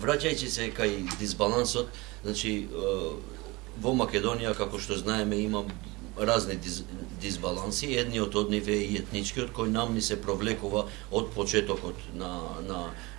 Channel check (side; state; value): left; quieter; 23.5 dB